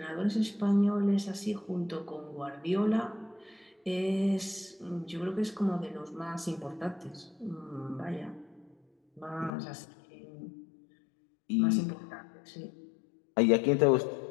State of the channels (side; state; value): right; drops out; at 9.5 s